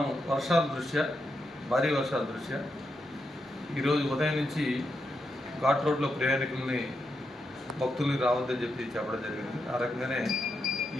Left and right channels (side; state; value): both; normal; correlation 0.84